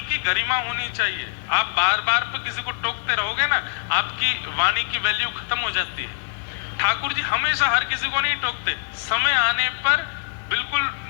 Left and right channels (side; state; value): right; silent; 58 dB below the other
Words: की गरिमा होनी चाहिए। आप बार बार पे किसी को टोकते रहोगे ना, आपकी वाणी की वैल्यू खत्म हो जाती है। ठाकुर जी हमेशा हर किसी को नहीं टोकते, समय आने पर बिल्कुल